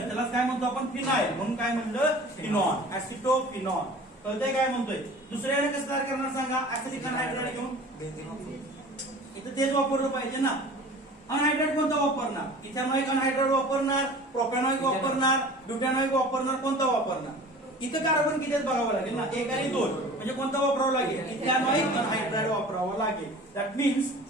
काय म्हणतो आपण? फिनाइल. म्हणून काय म्हणलं? फिनॉन. ऍसिटोफिनॉन. कळतंय काय म्हणतोय? दुसऱ्याने कसं तयार करणार सांगा? ऍसिटिक अनहायड्राइड घेऊन. इथं तेच वापरलं पाहिजे ना. अनहायड्राइड कोणता वापरणार? इथेनॉइक अनहायड्राइड वापरणार, प्रोपॅनॉइक वापरणार, ब्युटॅनॉइक वापरणार, कोणता वापरणार? इथं कार्बन किती बघावं लागेल ना, 1 आणि 2. म्हणजे कोणता वापरावं लागेल? इथेनॉइक अनहायड्राइड वापरावं लागेल. That means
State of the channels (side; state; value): both; normal; correlation 0.42